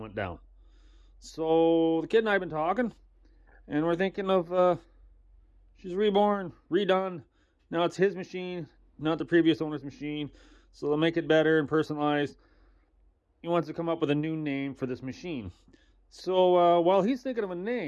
down. So the kid and I have been talking, and we're thinking of she's reborn, redone. Now it's his machine, not the previous owner's machine. So they'll make it better and personalized. He wants to come up with a new name for this machine. So while he's thinking of a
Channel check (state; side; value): identical; both; correlation 1.00